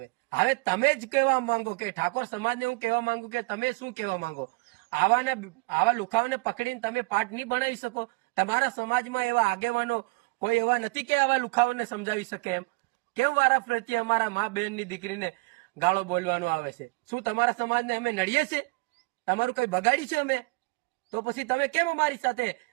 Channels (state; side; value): quieter; left; 27.3 dB